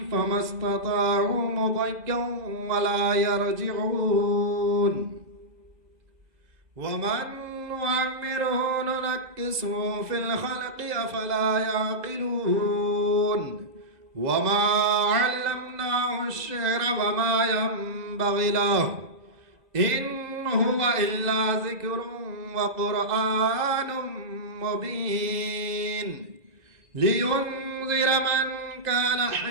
فما استطاعوا مضيا ولا يرجعون ومن نعمره ننكسه في الخلق أفلا يعقلون وما علمناه الشعر وما ينبغي له إن هو إلا ذكر وقرآن مبين لينذر من كان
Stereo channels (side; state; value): left; late; 2.0 ms